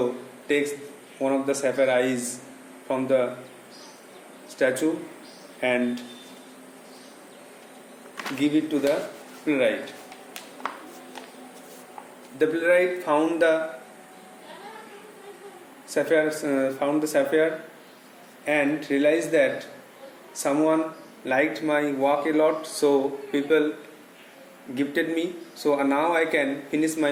takes one of the sapphire eyes from the statue and give it to the playwright. The playwright found the sapphire and realized that someone liked my work a lot, so people gifted me, so now I can finish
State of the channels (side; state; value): both; identical; correlation 1.00